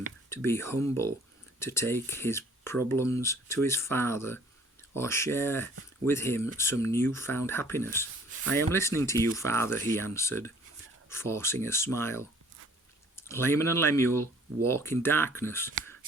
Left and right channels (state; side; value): normal; both; correlation 0.55